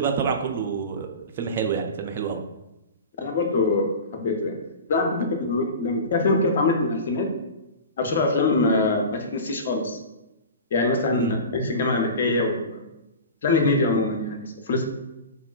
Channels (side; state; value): both; inverted; correlation -0.32